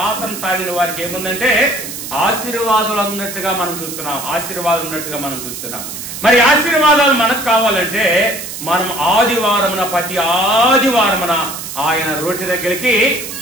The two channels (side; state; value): right; noise; hiss, 9 dB below the sound